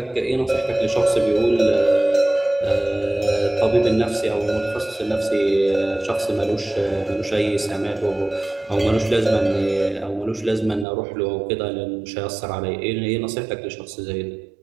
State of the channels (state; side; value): drops out; left; at 10.9 s